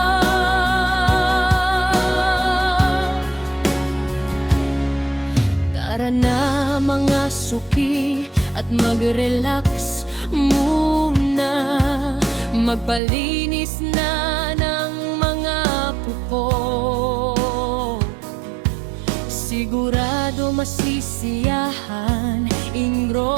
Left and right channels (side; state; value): left; drops out; at 13.0 s